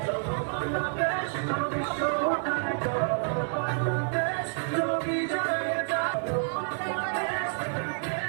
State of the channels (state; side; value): silent; left; 59 dB below the other